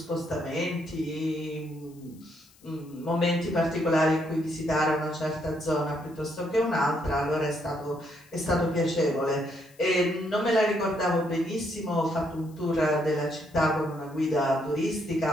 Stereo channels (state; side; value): noise; left; hiss, 28 dB below the sound